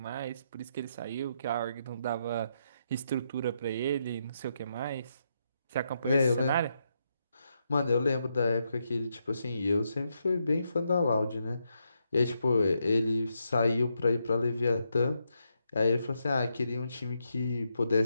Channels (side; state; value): both; inverted; correlation -0.81